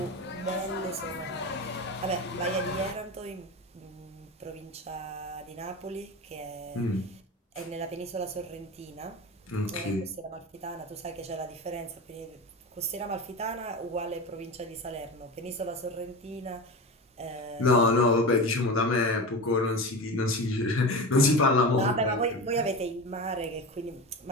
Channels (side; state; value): both; normal; correlation 0.26